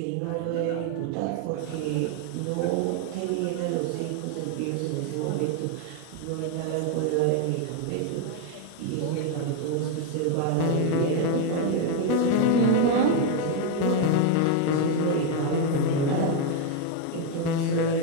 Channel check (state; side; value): different; both; correlation 0.01